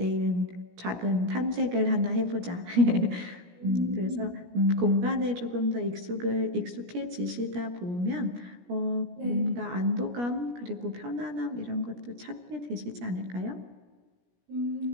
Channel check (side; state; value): left; late; 17 ms